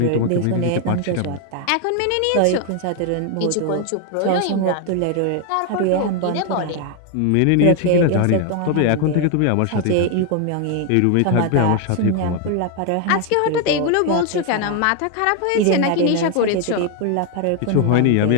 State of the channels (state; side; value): different; both; correlation 0.01